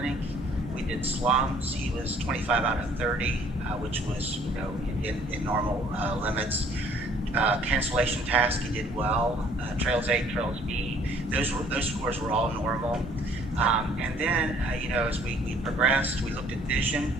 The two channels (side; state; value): both; normal; correlation 0.58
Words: we did slums. He was 25 out of 30, which was in normal limits. Cancellation task, he did well. Trails A, Trails B, those scores were all normal. And then, as we progressed, we looked at vision.